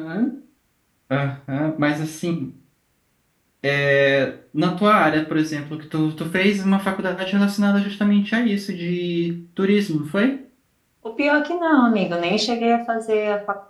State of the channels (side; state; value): both; identical; correlation 1.00